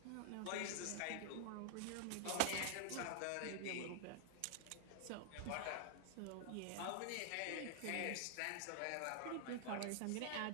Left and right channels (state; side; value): different; both; correlation -0.01